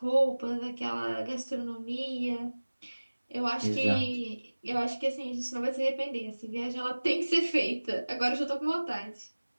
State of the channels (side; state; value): both; inverted; correlation -1.00